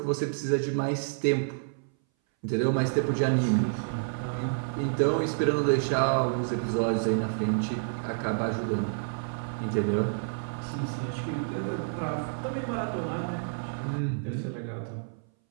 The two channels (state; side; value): silent; left; 58 dB below the other